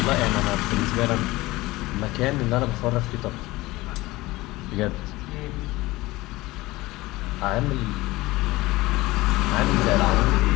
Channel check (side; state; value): right; quieter; 19.6 dB